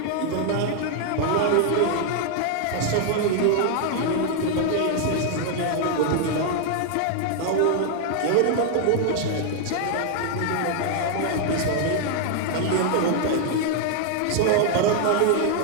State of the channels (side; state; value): both; different; correlation 0.00